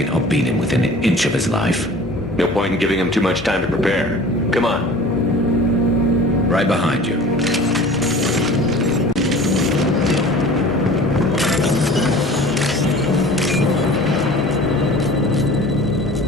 I'll beat him within an inch of his life. No point in giving him too much time to prepare. Come on. Right behind you.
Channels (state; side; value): normal; both; correlation 0.43